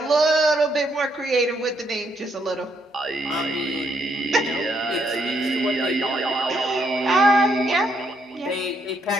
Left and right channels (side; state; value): both; normal; correlation 0.74